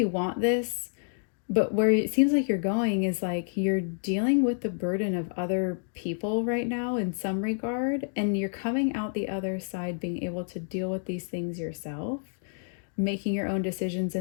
want this, but where it seems like you're going is like you're dealing with the burden of other people right now in some regard, and you're coming out the other side being able to deal with these things yourself, making your own decisions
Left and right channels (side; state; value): right; silent; digital silence